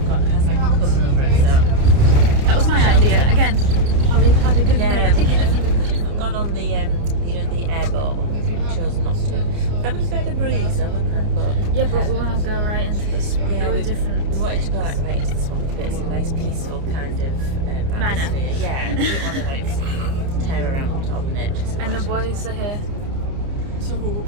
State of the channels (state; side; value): late; left; 29 ms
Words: got has like a cover over it, so... That was my idea. Again, Holly had a good Yeah, we idea. could have gone on the, the airboat, but we chose not to. That would have been a breeze though, wouldn't it? But Yeah, but we want to go right into the swamp. There were different we wanted to go things. like right into the swamp, but it's a nice peaceful kind of Manner. atmosphere. Yeah, we didn't want to like tear around all the nature. And the boys are here. So the